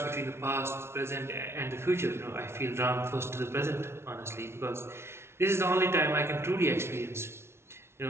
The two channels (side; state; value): left; late; 0.12 ms